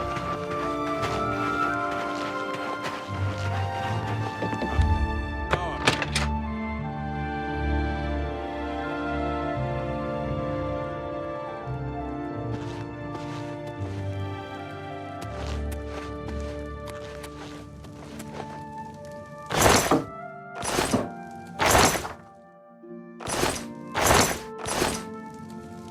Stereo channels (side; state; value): both; identical; correlation 1.00